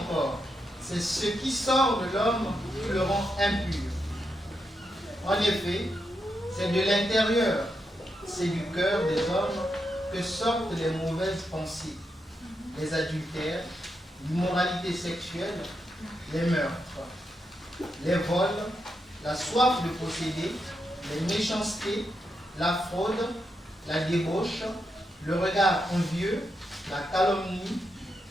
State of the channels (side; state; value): both; normal; correlation 0.84